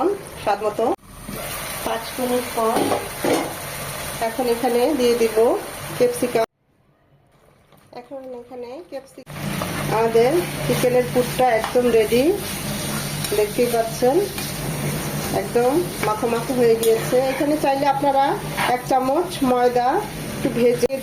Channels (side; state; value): both; identical; correlation 1.00